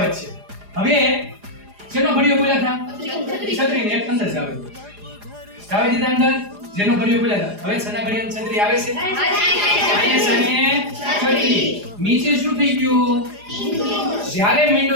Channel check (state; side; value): late; left; 4.9 ms